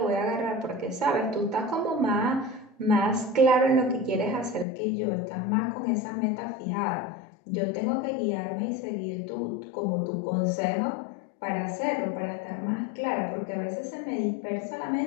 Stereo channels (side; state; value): right; drops out; at 4.7 s